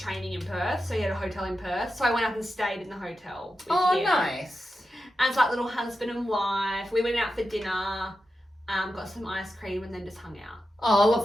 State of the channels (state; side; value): normal; both; correlation 0.90